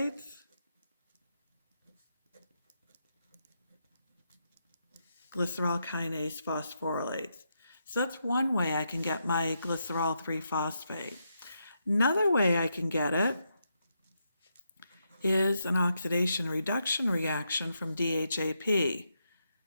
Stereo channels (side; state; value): both; inverted; correlation -0.82